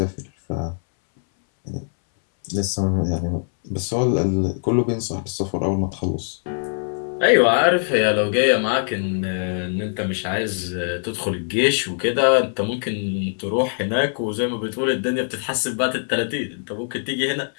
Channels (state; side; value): silent; right; 64 dB below the other